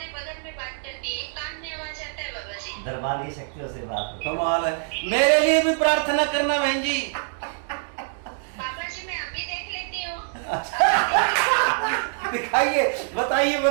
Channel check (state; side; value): silent; left; digital silence